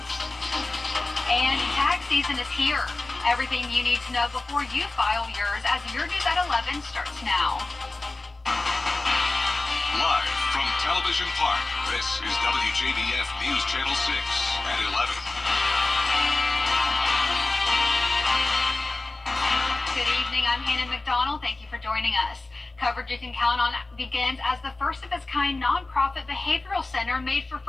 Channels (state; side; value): quieter; right; 3.1 dB